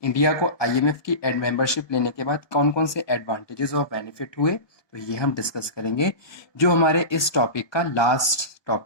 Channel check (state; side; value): late; right; 1.2 ms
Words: India को IMF की membership लेने के बाद कौन कौन से एडवांटेजेस और बेनिफिट हुए, तो ये हम डिस्कस करेंगे, जो हमारे इस टॉपिक का लास्ट